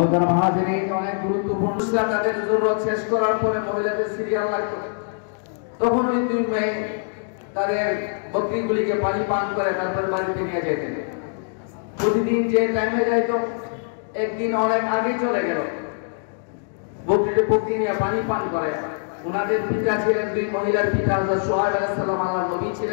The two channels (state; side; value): silent; right; digital silence